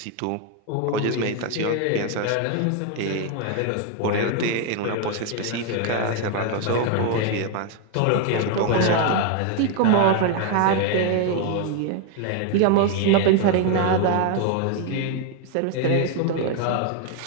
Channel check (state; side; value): different; both; correlation 0.01